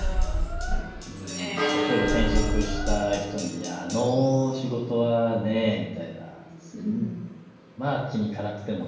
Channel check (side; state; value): both; identical; correlation 1.00